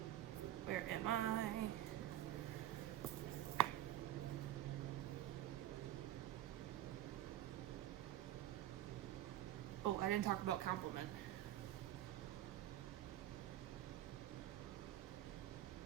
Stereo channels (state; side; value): quieter; left; 13.3 dB